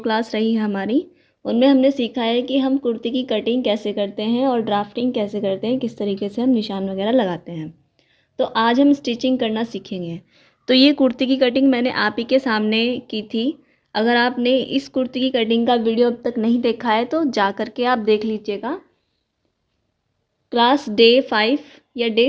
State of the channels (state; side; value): identical; both; correlation 1.00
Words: रही है हमारी, उनमें हमने सीखा है कि हम कुर्ती की कटिंग कैसे करते हैं और ड्राफ्टिंग कैसे करते हैं, किस तरीके से हम निशान वगैरह लगाते हैं। तो आज हम स्टिचिंग करना सीखेंगे। तो ये कुर्ती की कटिंग मैंने आप ही के सामने की थी। अगर आपने इस कुर्ती की कटिंग का वीडियो अब तक नहीं देखा है तो जा करके आप देख लीजिएगा। क्लास डे 5 या